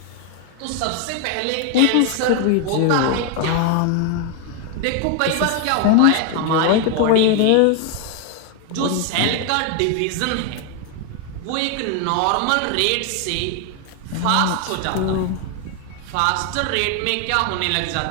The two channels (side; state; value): both; different; correlation 0.01